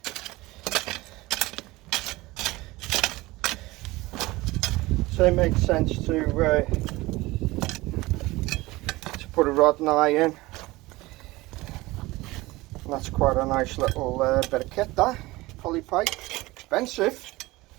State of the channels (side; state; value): left; quieter; 20.3 dB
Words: So it makes sense to put a rod and eye in. And that's quite a nice little bit of kit, that poly pipe. Expensive.